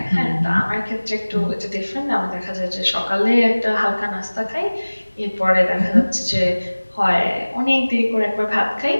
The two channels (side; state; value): both; inverted; correlation -1.00